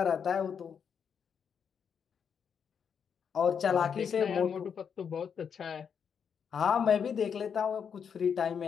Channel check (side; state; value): right; quieter; 7.1 dB